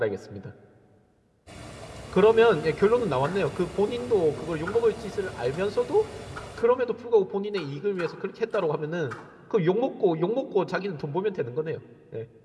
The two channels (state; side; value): identical; both; correlation 1.00